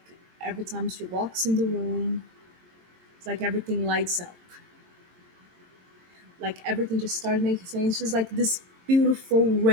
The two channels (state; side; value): late; left; 22 ms